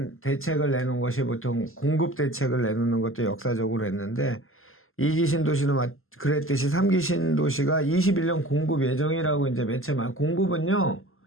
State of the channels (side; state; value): right; late; 0.61 ms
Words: 대책을 내놓은 것이 보통 공급 대책을 내놓는 것도 역사적으로 했는데 2기 신도시도 그랬듯이 3기 신도시가 21년 공급 예정이라고 이제 매체 공급은요